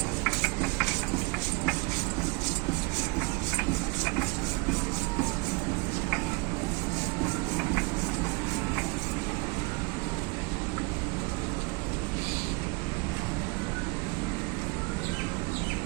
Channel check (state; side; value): quieter; left; 27.6 dB